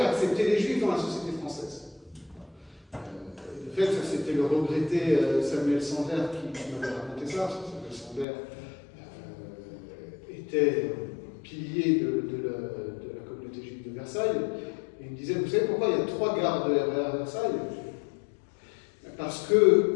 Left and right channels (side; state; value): right; drops out; at 8.2 s